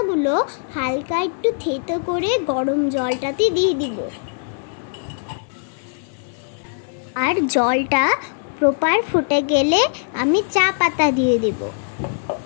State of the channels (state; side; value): silent; right; digital silence